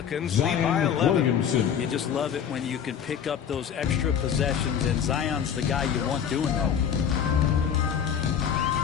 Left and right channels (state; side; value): quieter; right; 8.2 dB